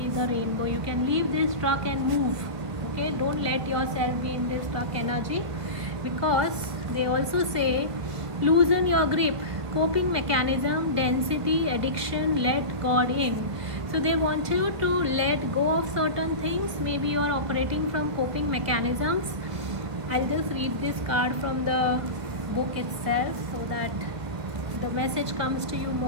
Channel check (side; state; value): left; late; 1.5 ms